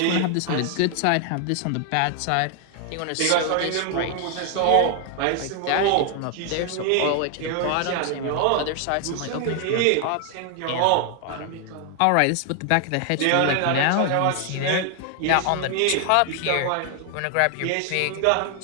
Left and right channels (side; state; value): both; different; correlation 0.00